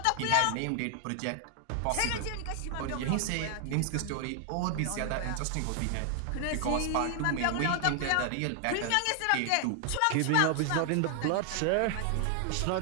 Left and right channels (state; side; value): different; both; correlation 0.00